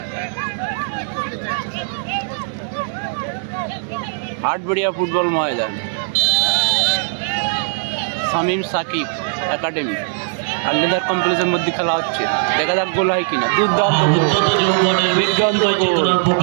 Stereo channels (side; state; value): left; silent; digital silence